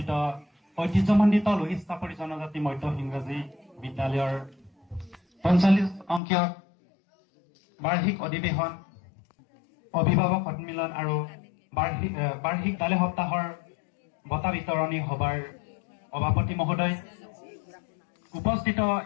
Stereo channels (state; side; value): drops out; right; at 6.2 s